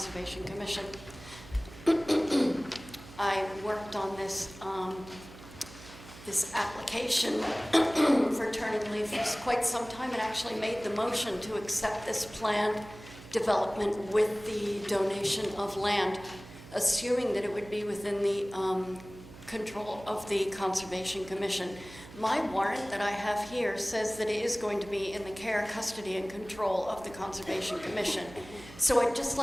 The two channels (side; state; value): right; noise; hum, 17 dB below the sound